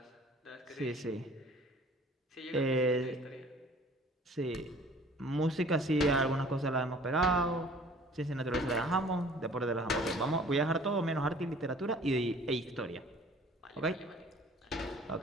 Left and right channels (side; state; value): both; normal; correlation 0.51